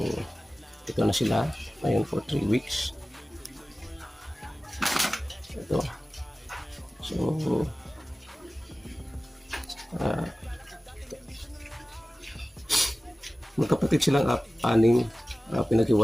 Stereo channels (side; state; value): both; normal; correlation 0.97